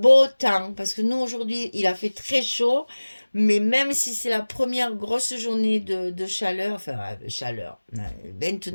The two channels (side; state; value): both; inverted; correlation -1.00